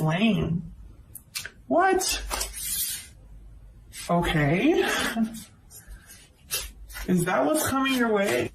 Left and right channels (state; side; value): identical; both; correlation 1.00